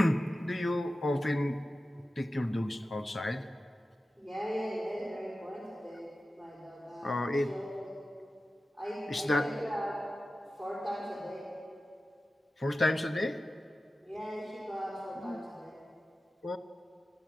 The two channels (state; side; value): normal; both; correlation 0.94